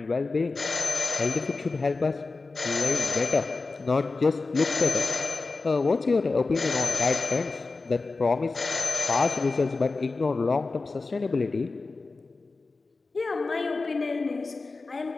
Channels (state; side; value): quieter; right; 3.8 dB